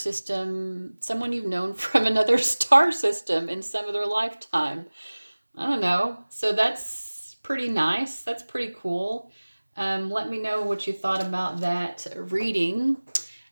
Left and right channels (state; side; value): inverted; both; correlation -1.00